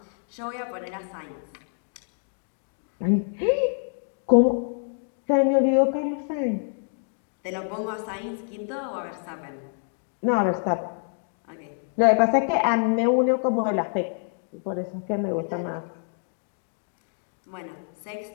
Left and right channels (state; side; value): silent; right; 60 dB below the other